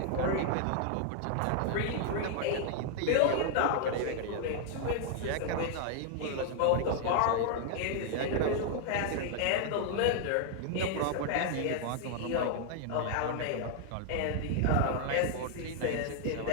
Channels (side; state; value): both; different; correlation 0.00